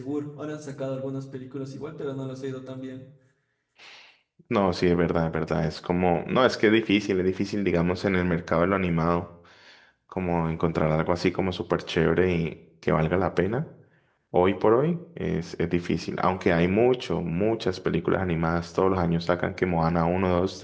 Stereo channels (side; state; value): both; identical; correlation 1.00